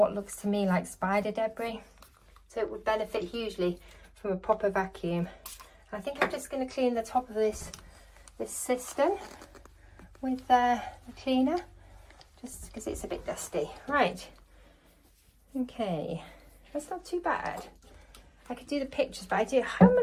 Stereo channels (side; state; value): both; identical; correlation 1.00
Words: looks to me like spider debris. So it would benefit hugely from a proper vacuum. And I think I'm just going to clean the top of this cistern with the cleaner, just because it's a bit dusty. Right, okay, that's not too bad. I could do the pictures, but how